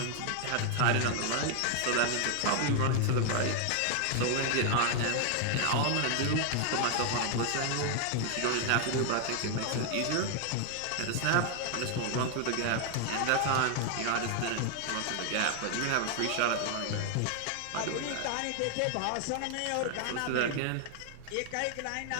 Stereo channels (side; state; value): both; different; correlation 0.00